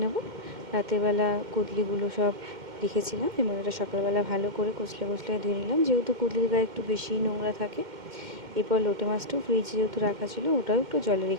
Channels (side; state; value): left; late; 2.1 ms